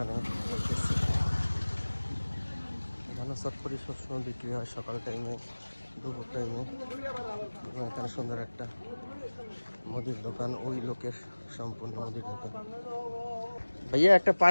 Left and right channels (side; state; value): both; inverted; correlation -1.00